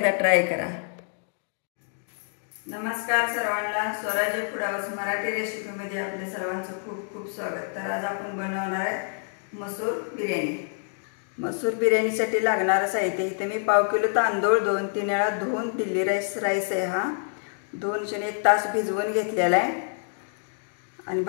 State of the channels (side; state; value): right; silent; digital silence